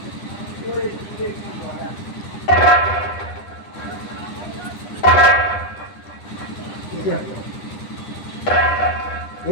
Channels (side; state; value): right; late; 10 ms